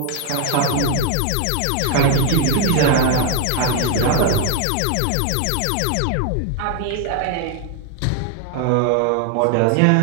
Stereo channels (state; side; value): different; both; correlation 0.00